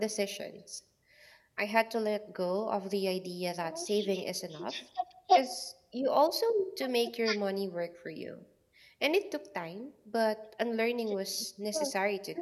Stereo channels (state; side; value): identical; both; correlation 1.00